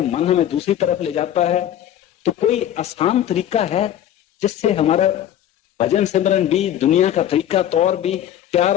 मन हमें दूसरी तरफ ले जाता है, तो कोई आसान तरीका है जिससे हमारा भजन सिमरन भी, दुनिया का तरीका तौर भी प्यार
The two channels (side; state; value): right; quieter; 11.1 dB